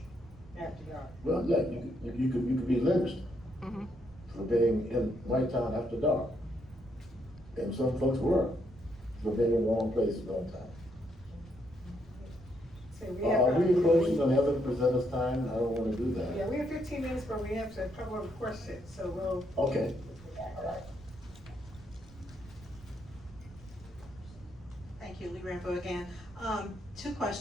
after dark. Well, yeah, you could be lynched for being in White Town after dark. And some folks were, for being in the wrong place at the wrong time. So we Are have, we approaching on the other presenters' time? I don't wanna do that. yeah, we have 15 minutes, but we have a couple of questions, so we'll. Okay. Thank you, Lee Rambo again. 2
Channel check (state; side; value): noise; right; rumble, 20 dB below the sound